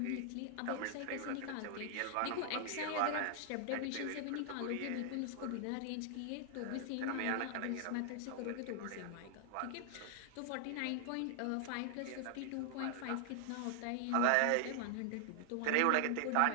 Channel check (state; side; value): different; both; correlation 0.00